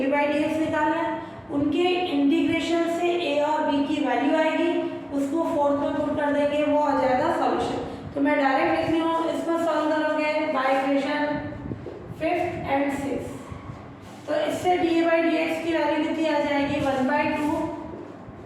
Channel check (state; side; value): identical; both; correlation 1.00